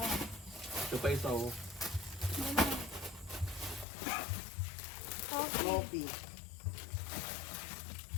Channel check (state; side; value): drops out; right; at 3.9 s